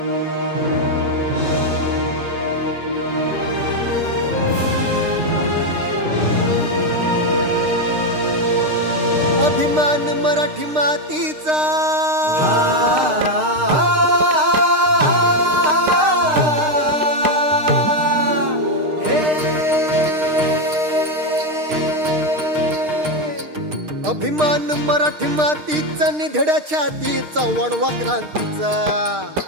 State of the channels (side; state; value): left; late; 6.5 ms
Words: मराठी मातीचा अभिमान मराठी मातीचा निधड्या छातीचा वणवा क्रांतीचा